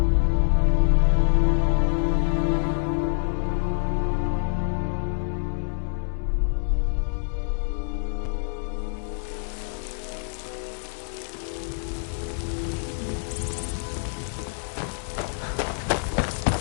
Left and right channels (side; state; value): right; silent; 61 dB below the other